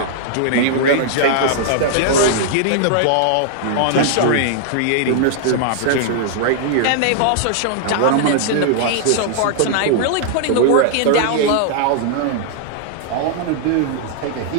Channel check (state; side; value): different; both; correlation -0.01